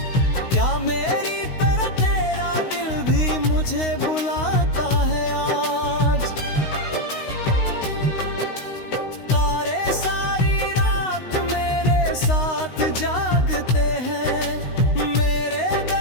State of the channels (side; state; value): right; late; 16 ms